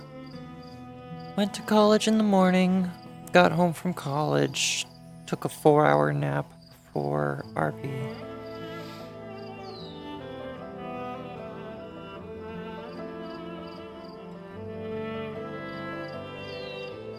Went to college in the morning, got home from college, took a 4-hour nap before RP.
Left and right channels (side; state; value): both; identical; correlation 1.00